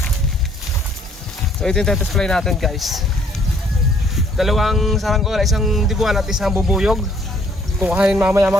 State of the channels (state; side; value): normal; both; correlation 0.63